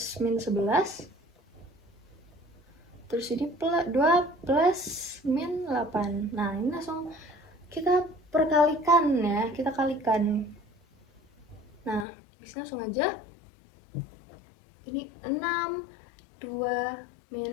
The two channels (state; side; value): drops out; right; at 12.1 s